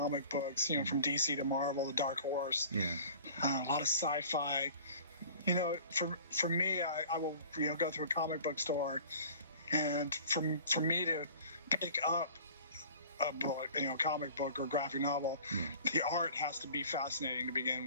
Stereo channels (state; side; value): inverted; both; correlation -0.45